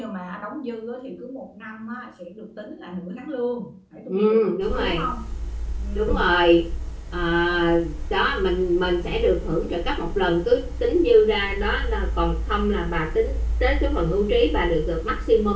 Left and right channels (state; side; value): identical; both; correlation 1.00